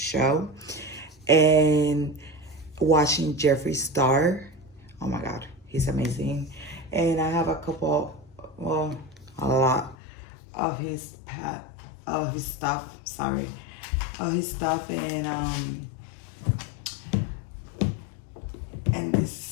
And watching Jeffree Star. Oh my God, he's amazing. And I have a couple, well, a lot of his stuff. Sorry, of his stuff, and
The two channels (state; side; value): drops out; right; at 10.0 s